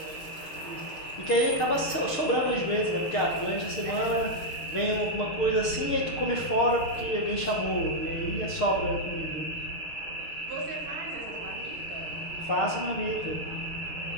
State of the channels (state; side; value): late; right; 6.6 ms